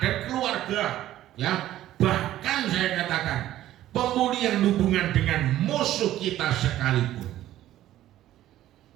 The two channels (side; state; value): left; quieter; 13.5 dB